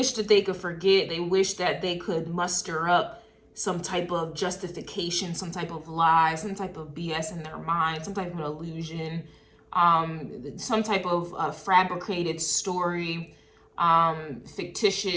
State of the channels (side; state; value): both; identical; correlation 1.00